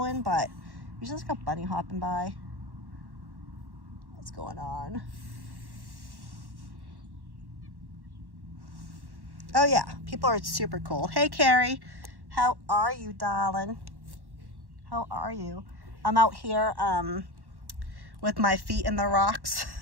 in, but you just got bunny hopping by. What's going on? Oh yeah, people are super cool. Hey Carrie, how are you, darling? How are you? I'm out here with my feet in the rocks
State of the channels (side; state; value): left; late; 1.1 ms